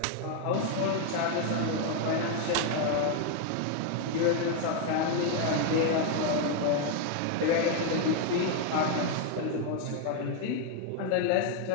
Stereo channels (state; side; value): different; both; correlation 0.00